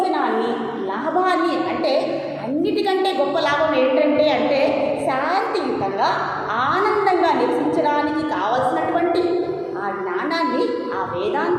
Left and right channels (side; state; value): both; identical; correlation 1.00